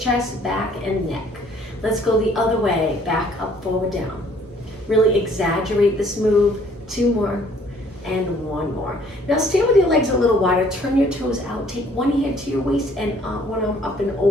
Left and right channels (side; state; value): both; normal; correlation 0.60